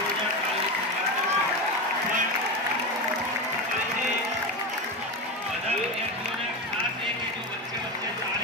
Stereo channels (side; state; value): both; normal; correlation 0.18